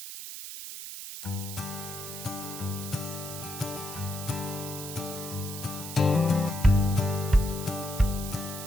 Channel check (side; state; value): right; noise; hiss, 9 dB below the sound